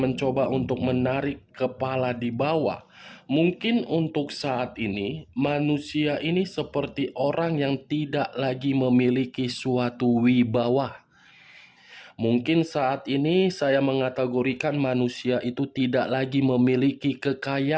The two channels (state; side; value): identical; both; correlation 1.00